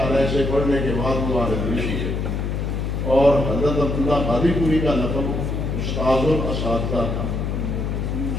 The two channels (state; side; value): noise; left; hum, 1 dB below the sound